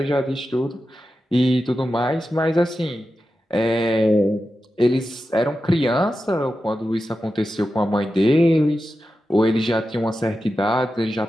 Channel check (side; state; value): both; normal; correlation 0.91